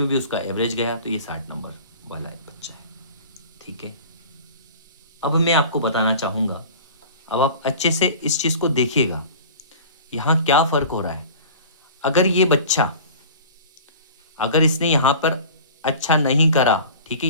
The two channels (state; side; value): inverted; both; correlation -0.40